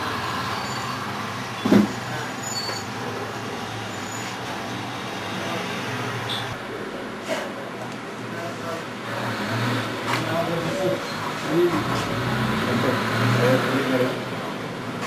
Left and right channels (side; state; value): both; identical; correlation 1.00